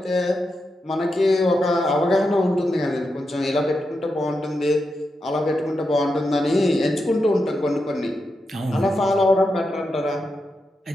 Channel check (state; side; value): normal; both; correlation 0.87